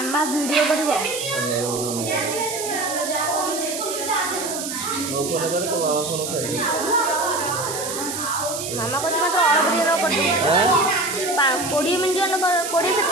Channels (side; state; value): right; noise; hiss, 6 dB below the sound